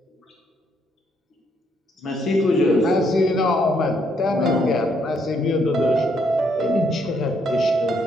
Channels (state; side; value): normal; both; correlation 0.72